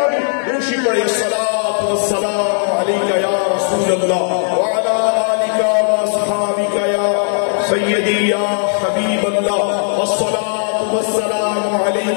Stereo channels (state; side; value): silent; right; digital silence